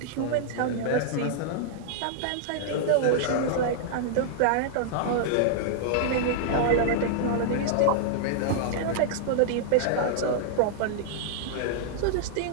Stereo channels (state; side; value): different; both; correlation -0.01